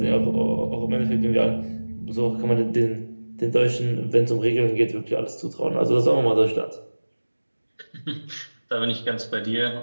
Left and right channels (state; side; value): inverted; both; correlation -1.00